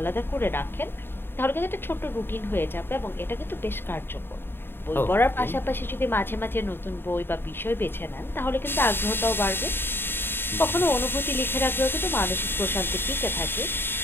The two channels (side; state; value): right; late; 0.10 ms